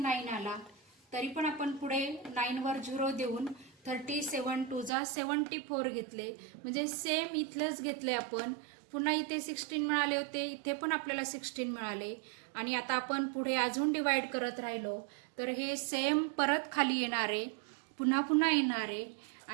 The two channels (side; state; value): left; drops out; at 4.9 s